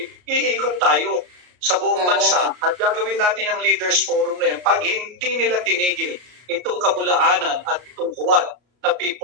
iikot tayo sa buong bansa at gagawin natin yung leaders forum na yan pag hindi nila tinigil itong kabulaanan at itong huwad na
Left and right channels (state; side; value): late; left; 33 ms